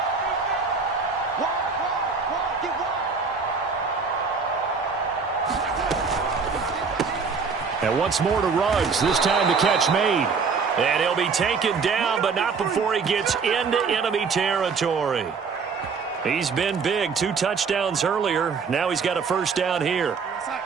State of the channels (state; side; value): quieter; left; 5.2 dB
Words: And once more to Ruggs, this time the catch made. And he'll be taken down, but not before he gets into enemy territory. He's been big, 2 touchdowns earlier. Now he's got a first down here.